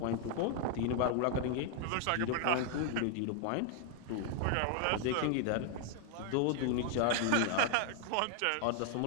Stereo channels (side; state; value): both; different; correlation 0.00